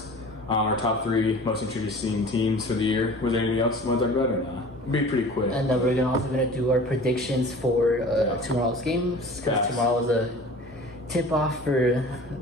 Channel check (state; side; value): normal; both; correlation 0.42